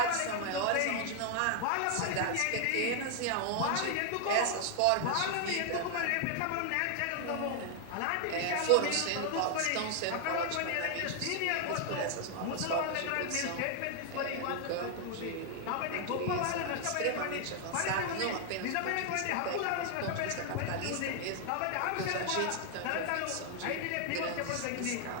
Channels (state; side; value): different; both; correlation 0.00